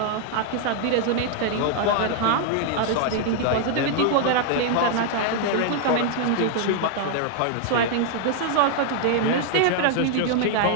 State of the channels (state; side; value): different; both; correlation 0.00